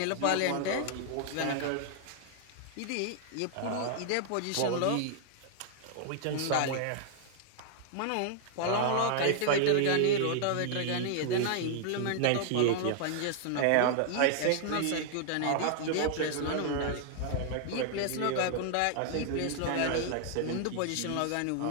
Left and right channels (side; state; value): both; different; correlation -0.01